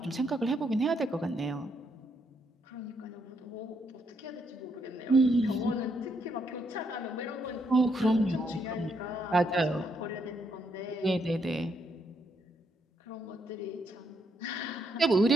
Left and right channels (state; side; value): normal; both; correlation 0.75